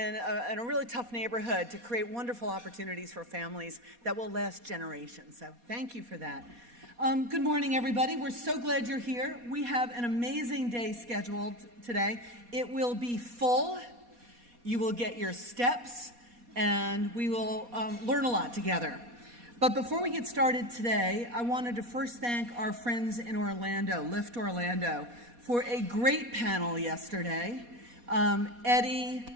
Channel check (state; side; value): late; left; 4.2 ms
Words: a really tough neighborhood to create wonderful opportunities for families that will last generations. So thank you for that. Good morning, everybody. We're so glad you're here. We have an amazing day scheduled today. It will be full. You will get your steps, and we will learn a lot together. But before we get started today, I wanted to first thank our friends in Orlando, Lift Orlando, for a great panel yesterday.